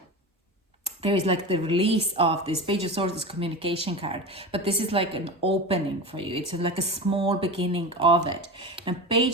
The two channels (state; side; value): normal; both; correlation 0.27